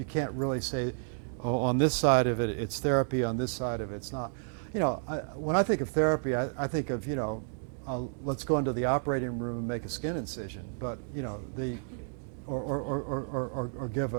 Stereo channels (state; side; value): silent; left; digital silence